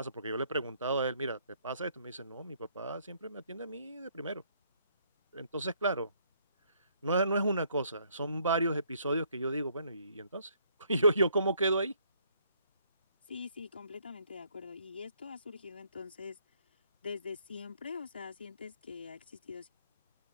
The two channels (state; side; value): inverted; both; correlation -0.67